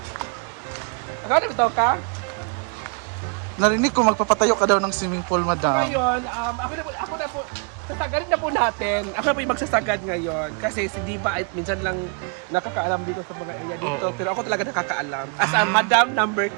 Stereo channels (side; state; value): left; quieter; 37.8 dB